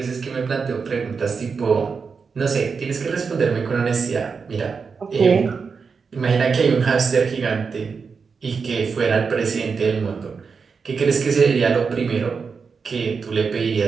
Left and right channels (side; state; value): left; quieter; 5.4 dB